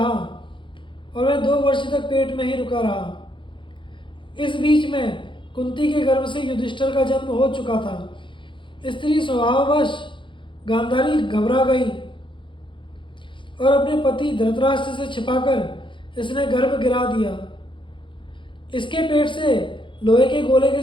और वह 2 वर्ष तक पेट में ही रुका रहा। इस बीच में कुंती के गर्भ से युधिष्ठिर का जन्म हो चुका था। स्त्री स्वभाववश गांधारी घबरा गई और अपने पति धृतराष्ट्र से छिपाकर इसने गर्भ गिरा दिया। इसके पेट से लोहे के गोले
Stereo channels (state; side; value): late; right; 0.24 ms